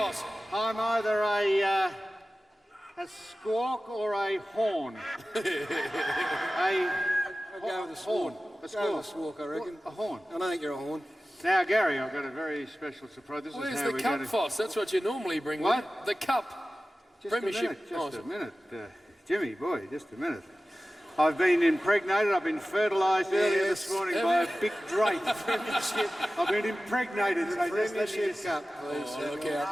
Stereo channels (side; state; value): both; normal; correlation 0.96